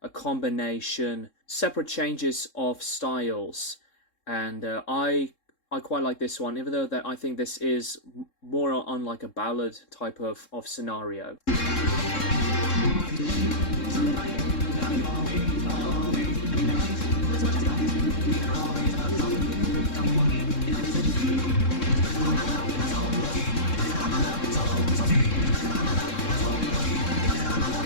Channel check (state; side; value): late; right; 3.7 ms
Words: combination, separate changes of styles, and I quite like this one, even though that I think this is more on like a ballad type of scenario.